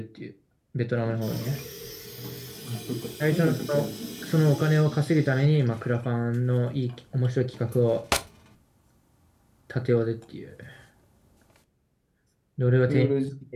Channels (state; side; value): identical; both; correlation 1.00